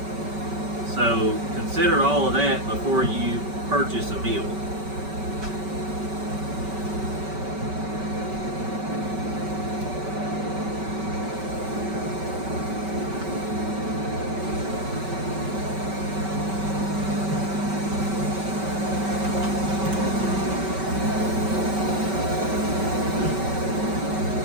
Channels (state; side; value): late; left; 5.2 ms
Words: So consider all of that before you purchase a meal.